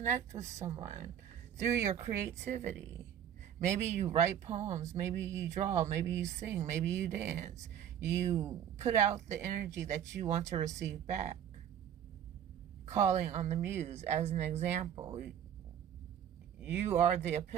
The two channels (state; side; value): quieter; left; 9.6 dB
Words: with someone through your creativity. Maybe you write poems, maybe you draw, maybe you sing, maybe you dance. You put out the energy that you want to receive back. Calling on the Muse as an example. You are the